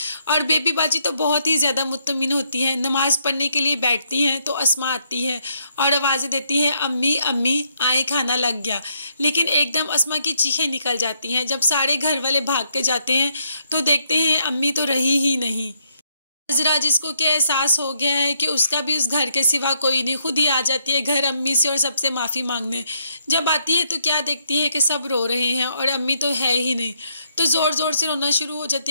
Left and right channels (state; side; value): inverted; both; correlation -0.74